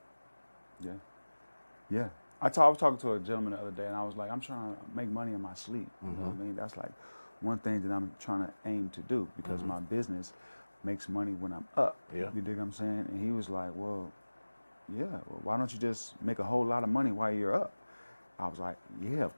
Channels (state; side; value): inverted; both; correlation -1.00